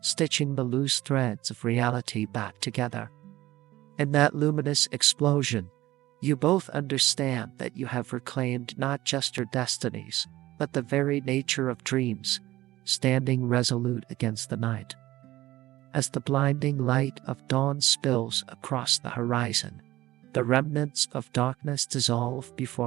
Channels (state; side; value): quieter; left; 16.6 dB